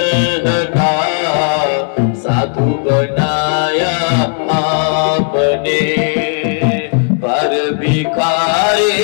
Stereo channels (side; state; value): right; silent; digital silence